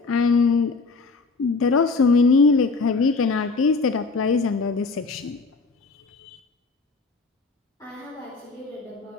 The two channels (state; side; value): quieter; right; 4.1 dB